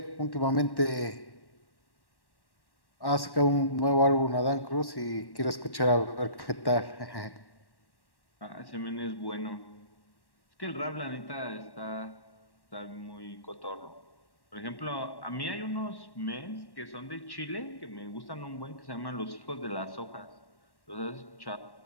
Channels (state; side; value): late; right; 1.1 ms